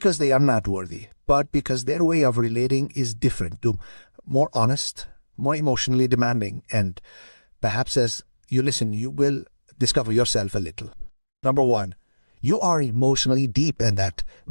they are not worthy, but because their way of relating is different, more honest, more emotionally demanding, and perhaps as you listen, you will discover yourself a little. Number 1, you are emotionally deep, and that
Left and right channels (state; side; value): inverted; both; correlation -1.00